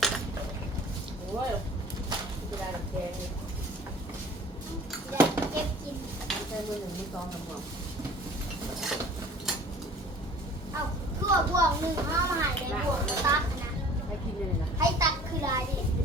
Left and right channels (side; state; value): both; normal; correlation 0.47